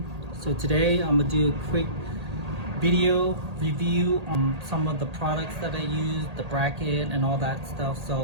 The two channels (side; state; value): left; late; 1.8 ms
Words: So today I'm gonna do a quick video review on some of the products that I use, the bracket and all that stuff.